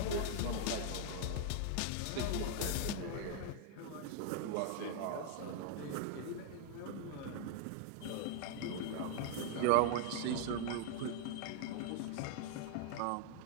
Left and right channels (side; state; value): both; different; correlation 0.00